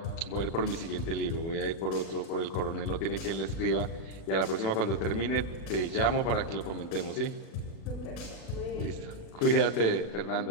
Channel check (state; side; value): late; right; 36 ms